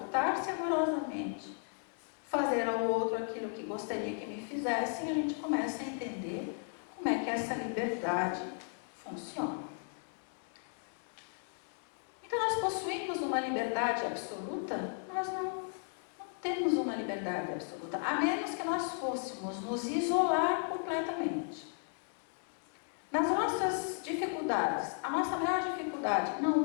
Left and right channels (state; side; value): silent; right; 54 dB below the other